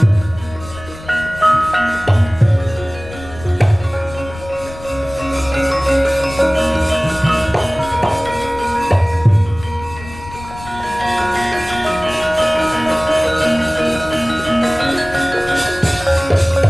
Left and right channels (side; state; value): left; noise; rumble, 16 dB below the sound